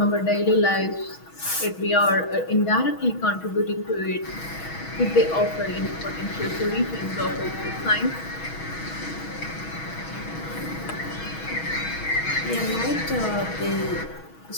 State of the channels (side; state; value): right; late; 6.2 ms